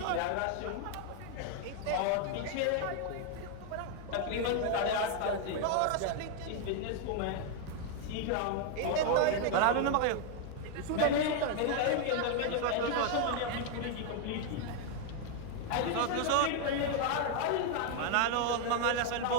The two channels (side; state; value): both; different; correlation 0.01